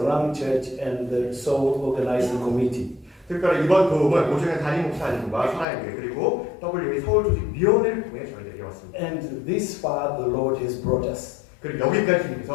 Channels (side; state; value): right; drops out; at 5.7 s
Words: Church, and the Soul Organizing Committee. 특별히 이번 도움은 오정현 담임 목사님과 사랑교회 그리고 WA 서울 조직위원회를 통해 저희들에게 왔습니다. And this far the Lord has brought us. 그리고 여기까지